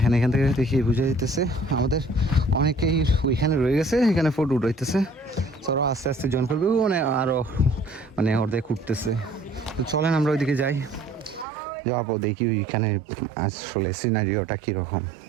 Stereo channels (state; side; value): drops out; left; at 11.5 s